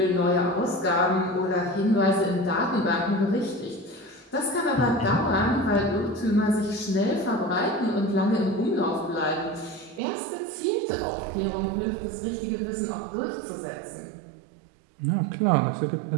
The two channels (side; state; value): left; drops out; at 10.0 s